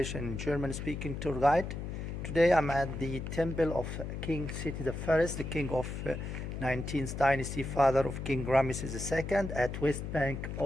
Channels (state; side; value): noise; left; hum, 6 dB below the sound